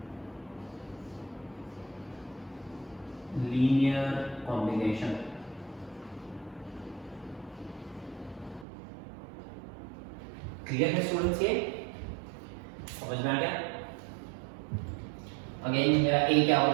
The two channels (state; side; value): drops out; left; at 8.7 s